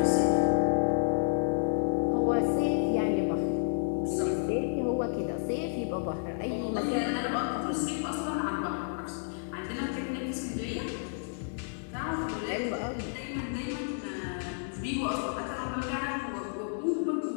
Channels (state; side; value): silent; right; digital silence